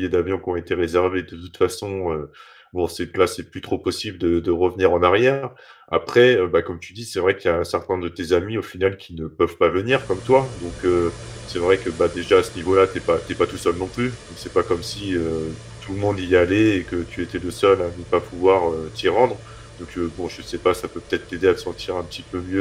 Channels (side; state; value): both; identical; correlation 1.00